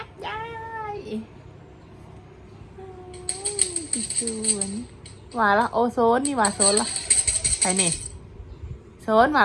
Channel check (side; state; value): both; identical; correlation 1.00